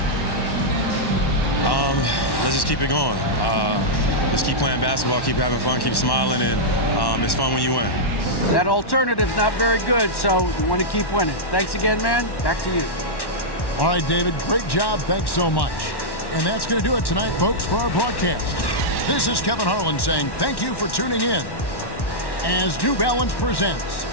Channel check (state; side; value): late; right; 1.1 ms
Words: Let's just keep it going. Just keep playing basketball, keep having fun, keep smiling, and it's fun when you win. That alternative's not very good, so you want to keep winning. Thanks again, man. Back to you. All right, David, great job. Thanks so much. And that's going to do it tonight, folks, for our broadcast. This is Kevin Harlan saying thank you for tuning in as New Balance presents